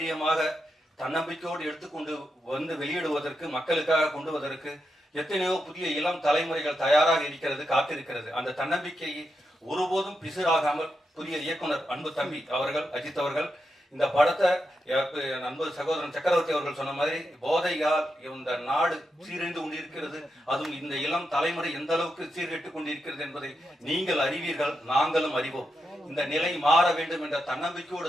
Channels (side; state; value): both; normal; correlation 0.86